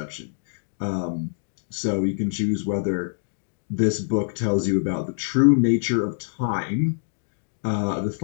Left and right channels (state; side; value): silent; right; digital silence